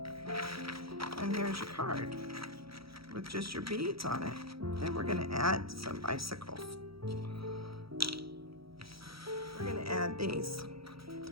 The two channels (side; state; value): left; late; 0.75 ms